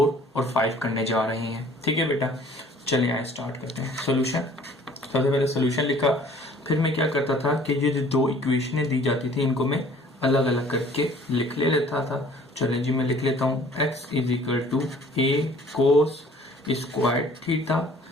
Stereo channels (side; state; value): both; normal; correlation 0.53